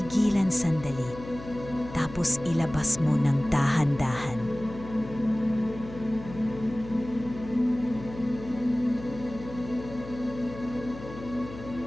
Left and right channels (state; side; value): noise; left; hum, 14 dB below the sound